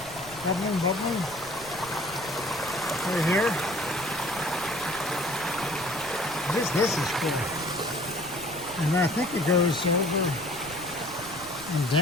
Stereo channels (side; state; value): left; noise; rumble, 19 dB below the sound